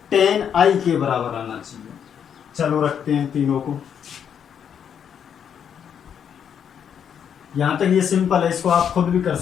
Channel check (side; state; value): right; quieter; 8.2 dB